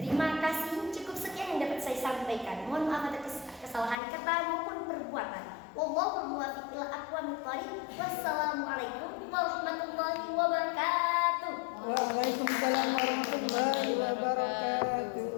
Terima kasih, cukup sekian yang dapat saya sampaikan. Mohon maaf atas kesalahan kata maupun perbuatan. Wallahul muwaffiq ila aqwamit thoriq. Wassalamualaikum warahmatullahi wabarakatuh. Waalaikumsalam warahmatullahi wabarakatuh.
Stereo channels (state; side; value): drops out; right; at 4.0 s